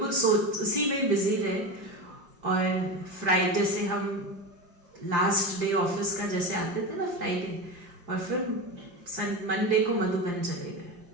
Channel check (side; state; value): left; late; 5.8 ms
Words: उसी में बिजी रहे। और फ्राइडे से हम लास्ट डे ऑफिस का जैसे आते थे ना फ्राइडे, और फिर मंडे को मधुबन चले गए।